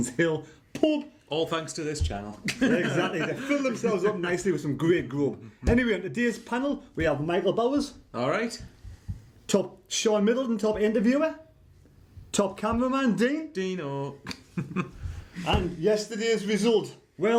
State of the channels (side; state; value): both; identical; correlation 1.00